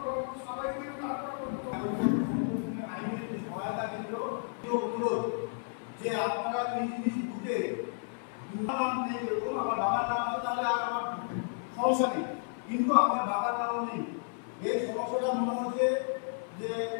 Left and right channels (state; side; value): silent; right; 56 dB below the other